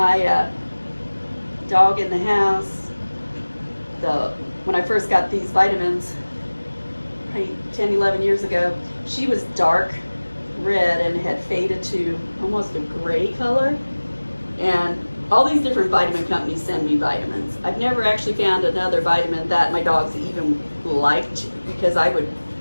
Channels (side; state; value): both; inverted; correlation -1.00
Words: dog in the house, when I first got these vitamins, probably 10, 11 years ago, she was dark red and had faded to almost a gray color. And all these different vitamin companies send me vitamins. I've never actually found another vitamin that my dogs even liked, because I would